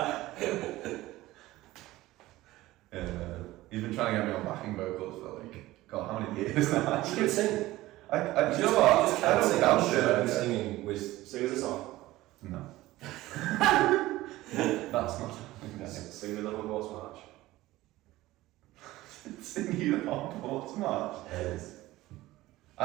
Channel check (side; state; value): left; quieter; 17.3 dB